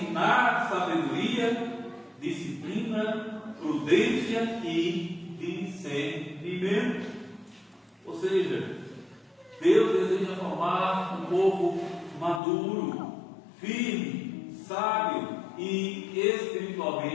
sabedoria, disciplina, prudência e discernimento. Ou seja, Deus deseja formar um povo maduro, firme, sábio e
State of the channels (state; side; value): drops out; right; at 12.4 s